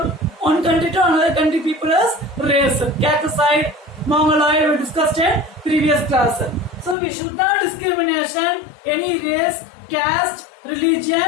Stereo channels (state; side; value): drops out; right; at 7.0 s